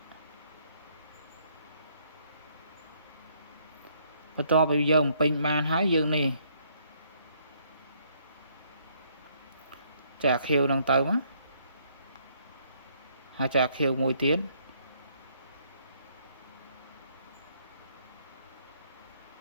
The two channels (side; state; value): both; inverted; correlation -0.68